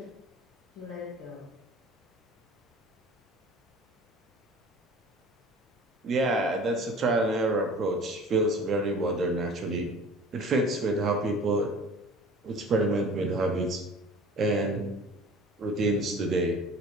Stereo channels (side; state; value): both; normal; correlation 0.43